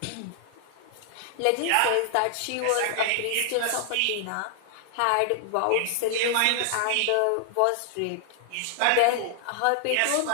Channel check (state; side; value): different; both; correlation -0.01